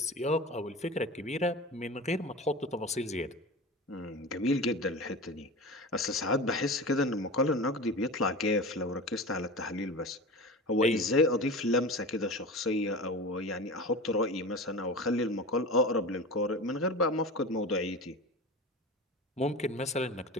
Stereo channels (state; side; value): normal; both; correlation 0.30